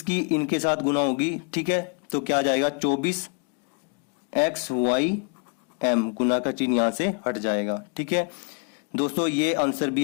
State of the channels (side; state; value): right; quieter; 35.9 dB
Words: की इनके साथ गुना होगी। ठीक है, तो क्या आ जाएगा, 24 x y m, गुना का चिन्ह यहां से हट जाएगा। ठीक है दोस्तों, ये आंसर भी